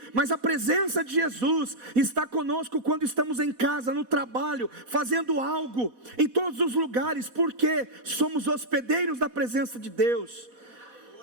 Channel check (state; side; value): late; left; 4.1 ms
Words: mas a presença de Jesus está conosco quando estamos em casa, no trabalho, fazendo algo, em todos os lugares, porque somos hospedeiros da presença de Deus.